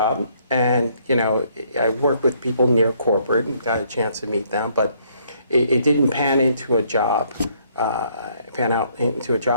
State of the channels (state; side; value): inverted; both; correlation -0.67